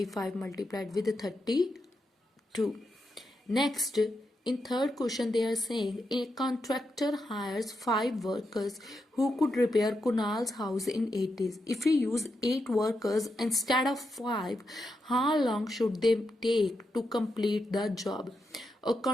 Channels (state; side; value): normal; both; correlation 0.85